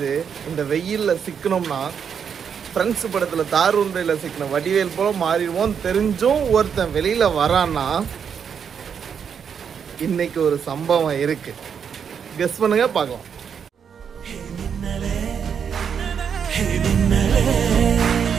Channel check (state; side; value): quieter; left; 7.3 dB